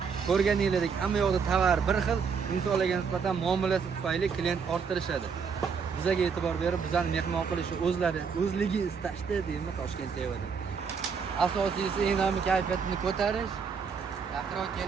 Ko'rganingizdek, hamma yoqda tovar bir xil, insonlarga nisbatan muomalasi tufayli klient orttirishadi. Bizga e'tibor berib, bizani mehmon qilishi o'zligi istashdi deymi Toshkent sevadi. Asosiysi eng kayfiyatini ko'tarish. Yaqinroq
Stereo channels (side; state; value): left; quieter; 6.0 dB